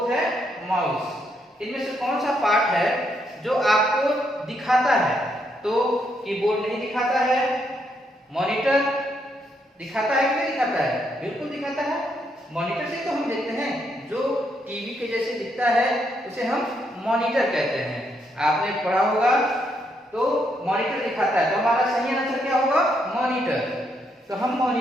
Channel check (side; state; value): both; normal; correlation 0.76